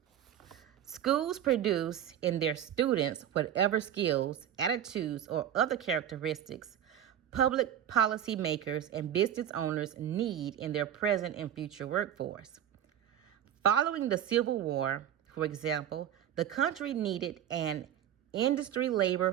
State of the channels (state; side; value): quieter; left; 10.3 dB